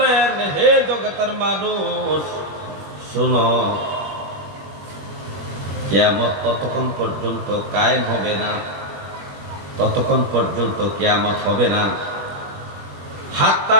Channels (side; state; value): left; late; 21 ms